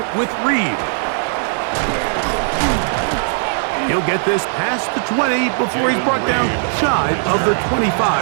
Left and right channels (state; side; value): silent; left; digital silence